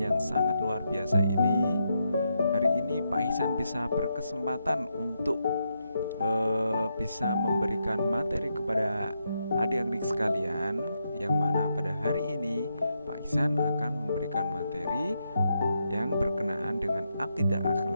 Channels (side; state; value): both; inverted; correlation -0.82